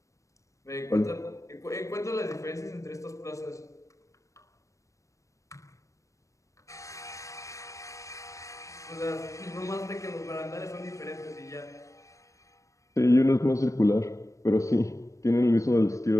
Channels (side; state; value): right; late; 0.15 ms